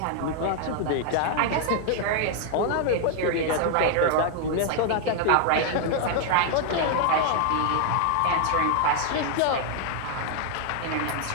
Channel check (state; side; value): different; both; correlation 0.00